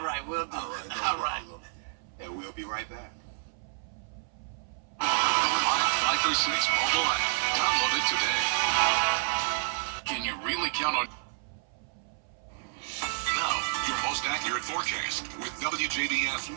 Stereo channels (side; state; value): left; silent; 58 dB below the other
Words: we'll do All it. right, no All right. problem. And we'll be right back. Live 5 for 6 mobile app. Download it today. Can you really count on... Now, your most accurate forecast with WJBF